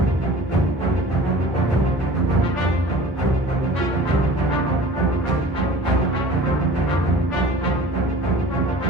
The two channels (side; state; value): both; normal; correlation 0.42